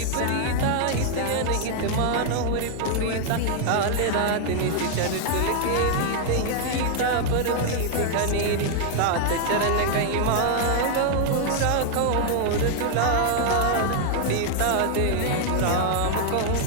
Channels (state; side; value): different; both; correlation 0.00